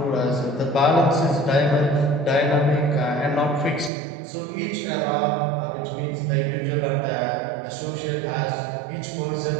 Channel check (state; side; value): drops out; left; at 3.9 s